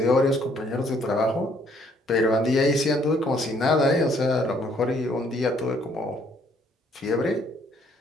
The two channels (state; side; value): normal; both; correlation 0.65